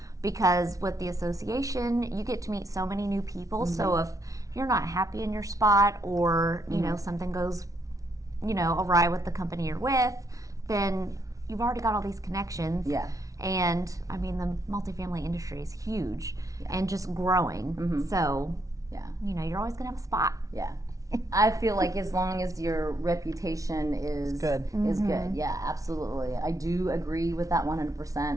Because with the association, you get to meet so many new people. So if you're not happy in your spot, or something goes awry with the company you're with, then you've already got all these connections. Yeah. And the multifamily industry is huge and just growing. So you're always gonna have a spot. Yeah. I feel like as long as your reputation is good, yeah, absolutely. I do agree with that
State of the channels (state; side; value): late; left; 0.17 ms